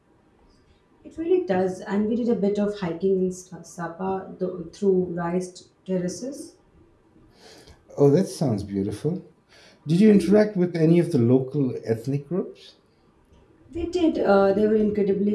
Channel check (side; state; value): both; identical; correlation 1.00